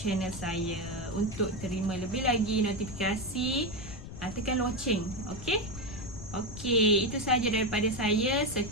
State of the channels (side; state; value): left; noise; rumble, 11 dB below the sound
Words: saya untuk terima lebih lagi notifikasi. Tekan loceng. Okey, itu sahaja daripada saya.